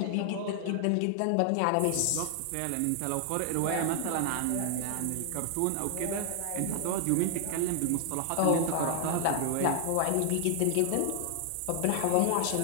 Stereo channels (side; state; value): both; different; correlation 0.00